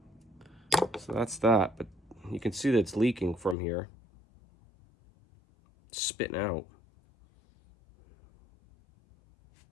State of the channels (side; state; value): right; drops out; at 3.6 s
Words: So that's that, but you can see that it's leaking from here. It's spitting out.